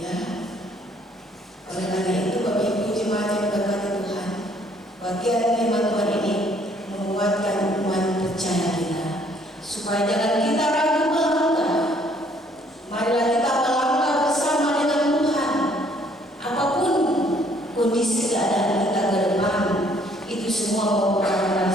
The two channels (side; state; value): both; normal; correlation 0.63